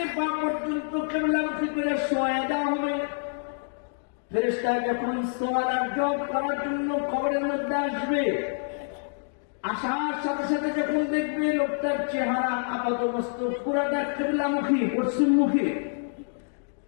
পা পর্যন্ত কিবলামুখী করে শোয়া দেওয়া হবে, ফেরেশতা যখন সওয়াল আর জবাব করার জন্য কবরের মধ্যে আসবে, আসার সাথে সাথে যখন দেখবে লোকটার চেহারা আপাতমস্তক পুরাটা কিবলামুখী, পশ্চিমমুখী,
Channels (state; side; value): silent; right; digital silence